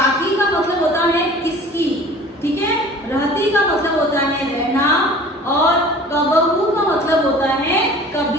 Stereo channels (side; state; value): both; normal; correlation 0.45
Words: का मतलब होता है किसकी, ठीक है। रहती का मतलब होता है रहना, और कबहू का मतलब होता है